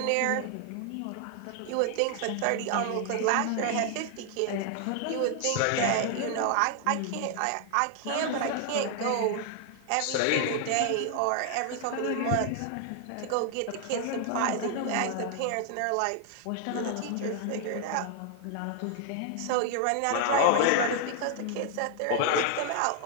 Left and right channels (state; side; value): different; both; correlation 0.00